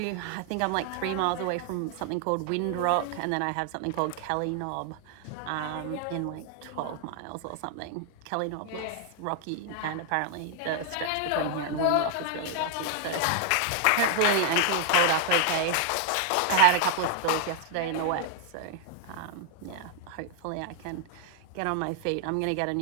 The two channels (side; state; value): both; different; correlation 0.00